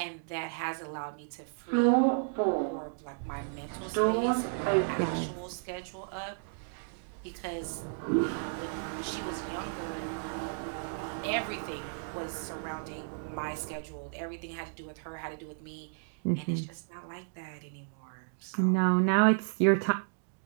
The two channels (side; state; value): left; silent; digital silence